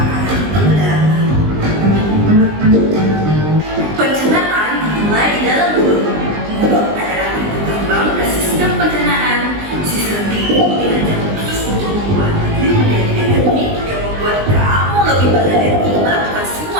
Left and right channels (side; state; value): left; late; 20 ms